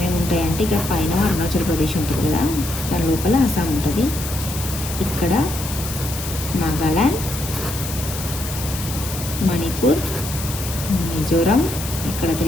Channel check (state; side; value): noise; left; hiss, 8 dB below the sound